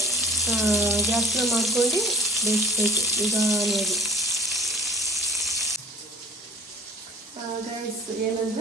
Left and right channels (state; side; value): normal; both; correlation 0.43